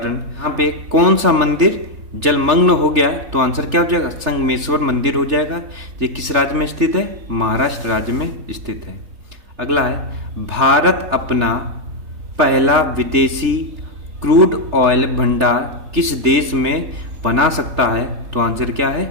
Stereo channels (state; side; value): late; left; 3.4 ms